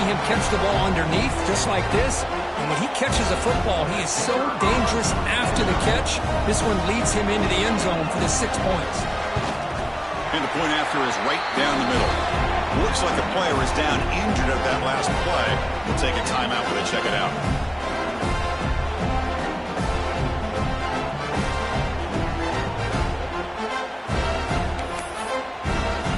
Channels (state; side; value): identical; both; correlation 1.00